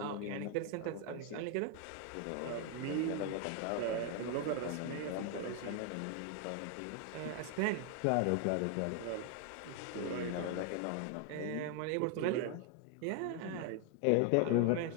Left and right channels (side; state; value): both; different; correlation 0.01